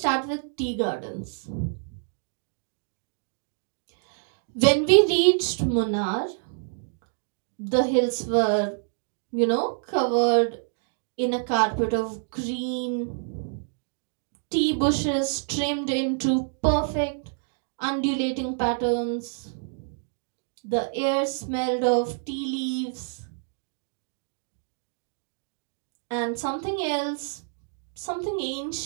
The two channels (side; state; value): left; silent; 60 dB below the other